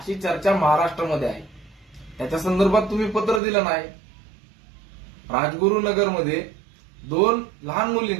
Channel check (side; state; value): left; drops out; at 3.4 s